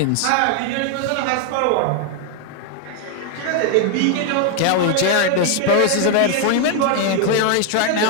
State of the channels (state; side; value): different; both; correlation 0.01